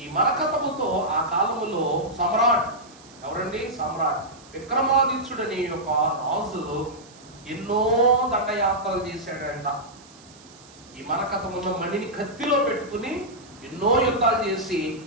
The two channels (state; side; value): noise; right; hiss, 24 dB below the sound